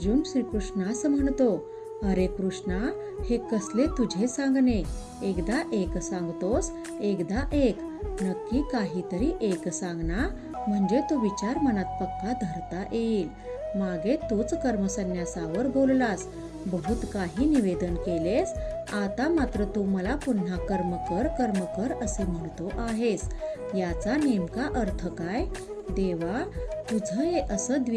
श्रीकृष्णास म्हणतो, अरे कृष्णा, हे कसले तुझे सांगणे. एकदा एक सांगतोस, एकदा एक. नक्की काहीतरी एक सांग ना, म्हणजे तो विचार मनात पक्का धरता येईल. मागे तूच कर्मसन्यासावर बोललास, बहुत काही निवेदन केलेस. आता मात्र तू मला पुन्हा कर्म कर असे म्हणतो आहेस. याचा नेमका अर्थ काय? देवा, तुझं हे असं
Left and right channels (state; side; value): identical; both; correlation 1.00